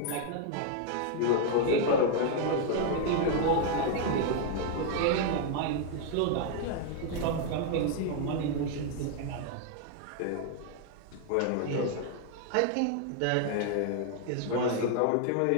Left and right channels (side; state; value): both; different; correlation 0.00